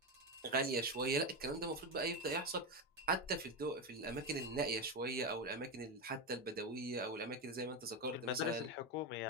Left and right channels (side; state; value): both; normal; correlation 0.13